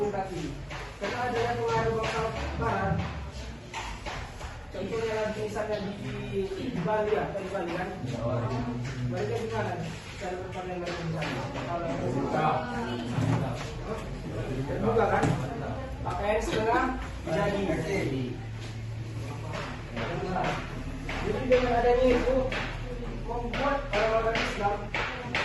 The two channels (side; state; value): both; identical; correlation 1.00